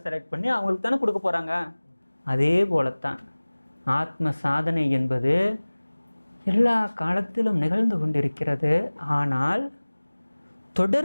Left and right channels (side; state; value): both; inverted; correlation -1.00